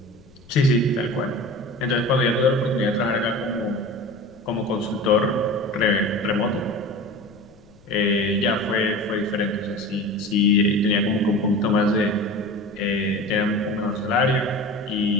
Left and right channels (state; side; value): noise; left; rumble, 27 dB below the sound